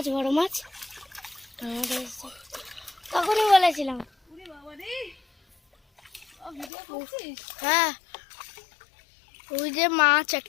বড় মাছ, তখনই বলেছিলাম। ওরে বাবা রে, ভিডিও করছিস? হ্যাঁ, ওই যে মাছ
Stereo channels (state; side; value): drops out; right; at 6.7 s